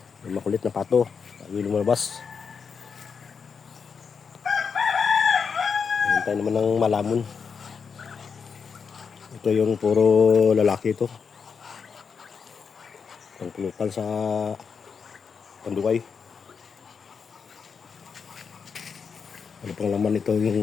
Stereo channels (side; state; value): right; quieter; 6.0 dB